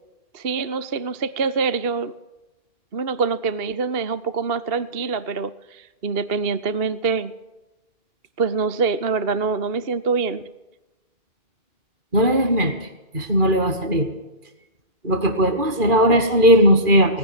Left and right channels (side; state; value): left; late; 2.4 ms